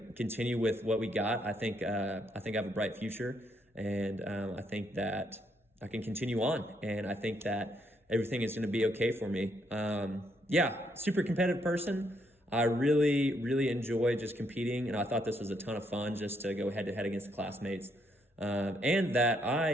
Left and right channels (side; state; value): both; normal; correlation 0.74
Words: continue with what we got. I think I have a bright future, and I think that I can continue on, and I think that everything is going to be okay for me. Yeah, super competitive person. I really enjoy just competing, and I thought this was a ton of fun just to go head to head against the classmates. And that I